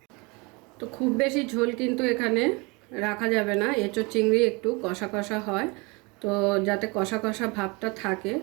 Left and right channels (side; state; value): left; quieter; 28.0 dB